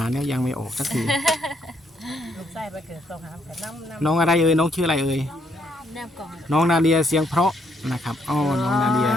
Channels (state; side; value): normal; both; correlation 0.72